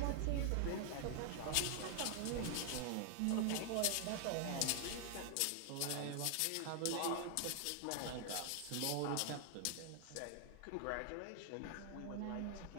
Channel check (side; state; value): both; different; correlation 0.00